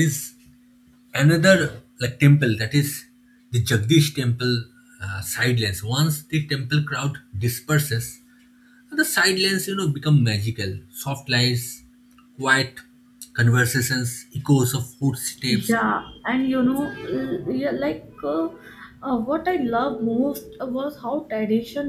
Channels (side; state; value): both; identical; correlation 1.00